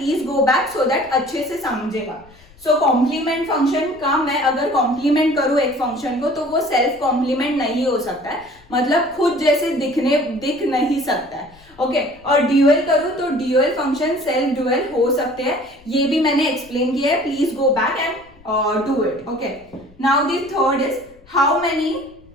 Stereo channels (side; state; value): left; noise; rumble, 27 dB below the sound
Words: go back so that अच्छे से समझेगा. सो कॉम्प्लीमेंट फंक्शन का मैं अगर कॉम्प्लीमेंट करूं एक फंक्शन को तो वो सेल्फ कॉम्प्लीमेंट नहीं हो सकता है, मतलब खुद जैसे दिख नहीं सकता है. ओके और ड्यूअल करूं तो ड्यूअल फंक्शन सेल्फ ड्यूअल हो सकते हैं. ये भी मैंने एक्सप्लेन किया है. Please go back and do it. Okay now the third is how many